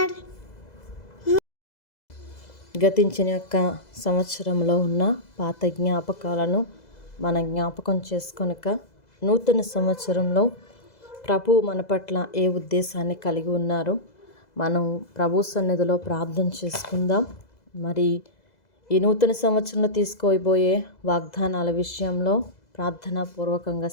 గతించిన యొక్క సంవత్సరంలో ఉన్న పాత జ్ఞాపకాలను మనం జ్ఞాపకం చేసుకొనక నూతన సంవత్సరంలో ప్రభు మన పట్ల ఏ ఉద్దేశాన్ని కలిగి ఉన్నారు మనం ప్రభు సన్నిధిలో ప్రార్థన చేసుకుందాం. మరి ఈ నూతన సంవత్సరంలో తీసుకోబోయే వాగ్దానాల విషయంలో ప్రార్థనాపూర్వకంగా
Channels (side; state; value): right; late; 2.0 ms